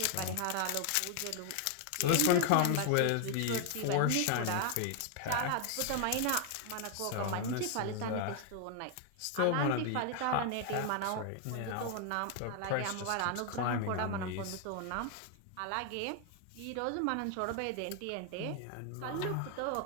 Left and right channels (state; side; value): different; both; correlation 0.00